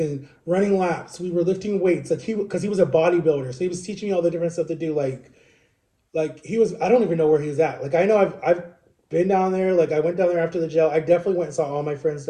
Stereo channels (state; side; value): identical; both; correlation 1.00